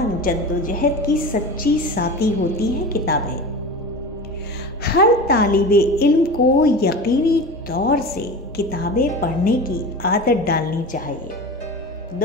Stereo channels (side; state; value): both; normal; correlation 0.30